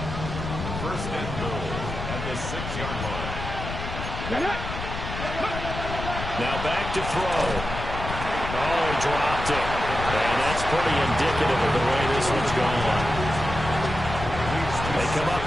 First and goal at the 6-yard line. Now back to throw. Oh, he dropped it. And that's pretty indicative of the way this one's gone. They come up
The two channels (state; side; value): noise; left; rumble, 6 dB below the sound